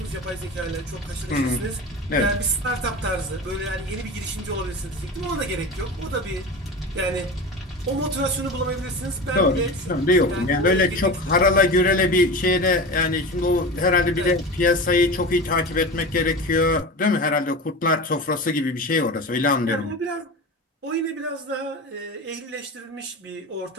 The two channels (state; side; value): normal; both; correlation 0.29